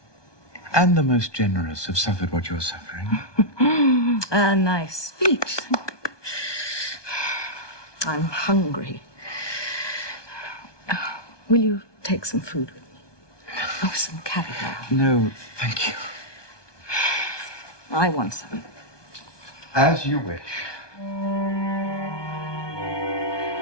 and the most generous have suffered what you're suffering. A nice speech. I'm hungry. Will you take some food with me? Oh, some caviar. No, thank you. I want some. As you wish.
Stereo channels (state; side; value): late; right; 1.2 ms